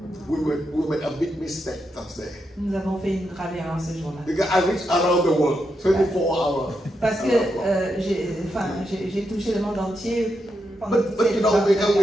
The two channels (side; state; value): both; normal; correlation 0.84